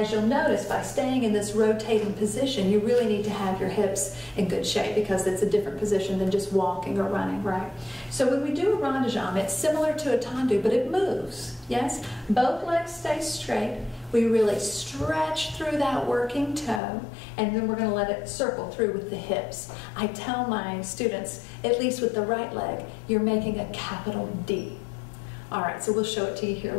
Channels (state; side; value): drops out; right; at 16.8 s